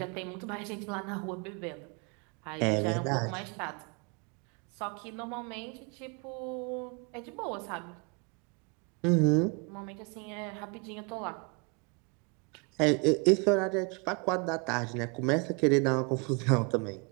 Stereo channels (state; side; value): quieter; left; 32.7 dB